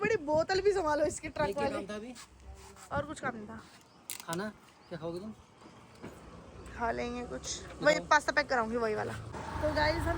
बोतल भी संभालो इसकी ट्रक क्या वाली। काम था अभी? और कुछ काम नहीं था। खाना क्या खाओगे तुम? खा लेंगे कुछ, वही पास्ता पैक कराऊंगी वही वाला। तो गाइस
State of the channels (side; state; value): both; identical; correlation 1.00